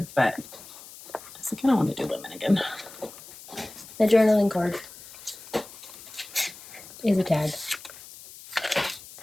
But I was like, I don't want to do lemon again. The journaling card is a tag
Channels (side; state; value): left; noise; hiss, 17 dB below the sound